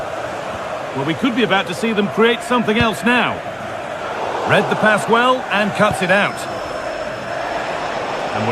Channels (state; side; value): identical; both; correlation 1.00